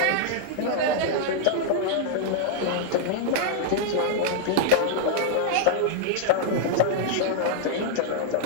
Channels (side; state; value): both; different; correlation -0.01